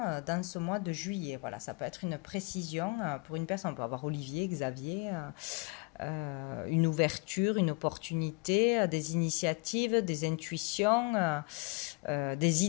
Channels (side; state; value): right; quieter; 28.9 dB